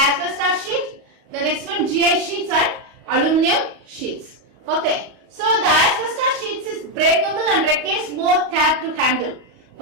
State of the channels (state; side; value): late; left; 37 ms